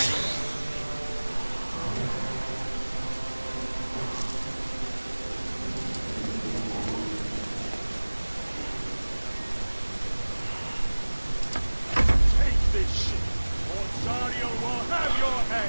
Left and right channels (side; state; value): both; inverted; correlation -1.00